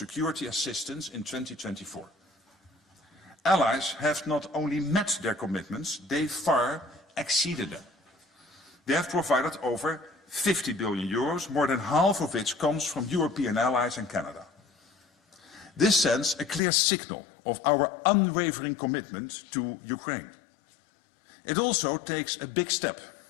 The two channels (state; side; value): drops out; right; at 16.6 s